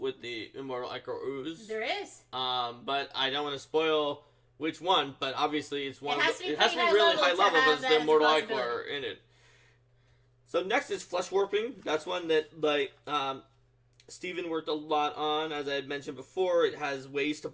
with the Immortal Ichor Ooze. There is. But I don't want to spoil which one, but obviously it's one. It has to be high really level high level have because the Immortal as a Ichor in it. So next is Flesh Warping. That's one that, Steven worked a lot on. As I had mentioned before, it has ways to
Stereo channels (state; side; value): identical; both; correlation 1.00